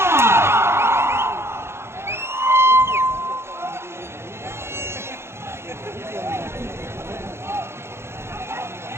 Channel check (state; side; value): late; left; 0.12 ms